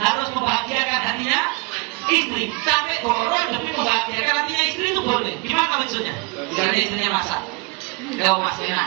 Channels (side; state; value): left; quieter; 26.5 dB